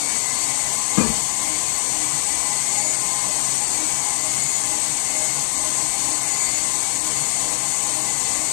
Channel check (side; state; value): right; silent; digital silence